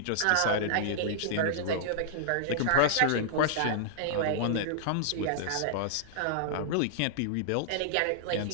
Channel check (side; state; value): both; different; correlation -0.02